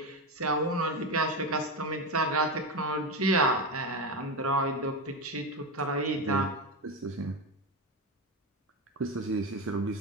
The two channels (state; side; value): normal; both; correlation 0.15